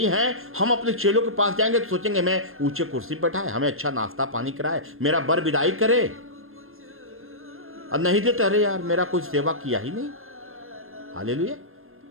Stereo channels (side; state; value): left; late; 0.60 ms